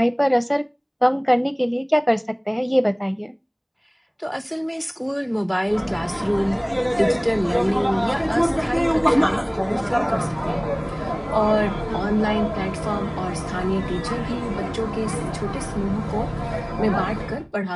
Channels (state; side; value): identical; both; correlation 1.00